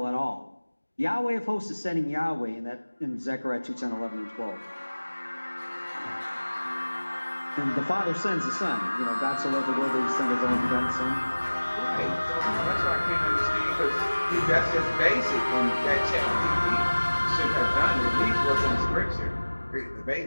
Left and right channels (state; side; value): inverted; both; correlation -1.00